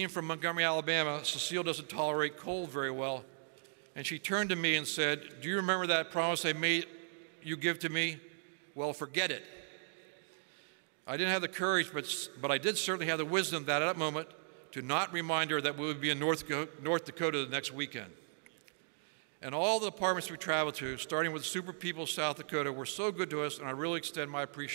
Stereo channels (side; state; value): left; silent; digital silence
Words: from Montgomery, Alabama, Cecile doesn't tolerate cold very well, and she turned to me and said, "Do you remember that promise I made you give to me? Well, forget it." I didn't have the courage, but I did certainly have the wisdom that at that moment to not remind her that we would be in North Dakota the next weekend. And all the departments we traveled to, starting with Super People South Dakota, were so good to us, and I really extend my